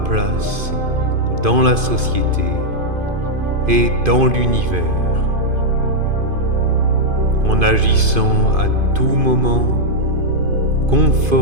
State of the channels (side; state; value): left; late; 2.5 ms